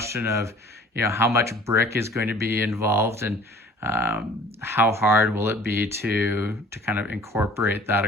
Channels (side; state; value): both; normal; correlation 0.48